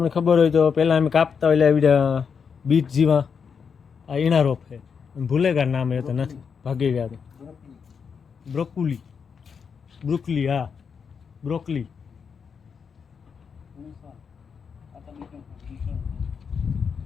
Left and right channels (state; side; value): quieter; right; 6.3 dB